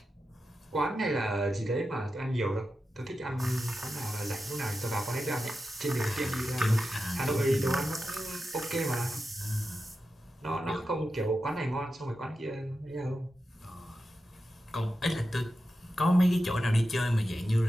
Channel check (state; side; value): normal; both; correlation 0.91